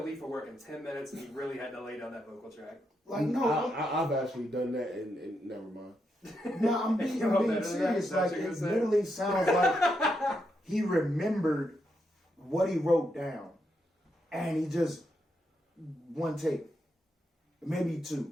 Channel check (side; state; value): both; normal; correlation 0.82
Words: leave for work in 10 minutes and he really had to lay down that vocal track. Like, no, I've actually done that and never mind. no, I'm being serious. Like, it literally sounds like he remembered what he wrote down, and he just one take, maybe